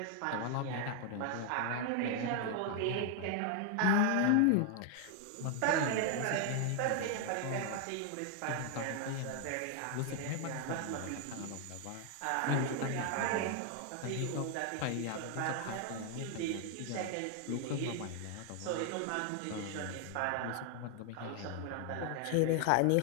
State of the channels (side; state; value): both; different; correlation 0.00